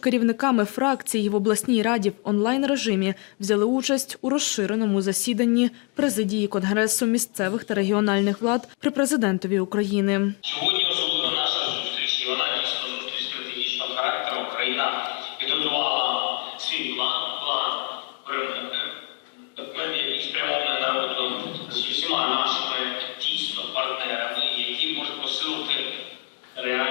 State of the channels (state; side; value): quieter; right; 33.2 dB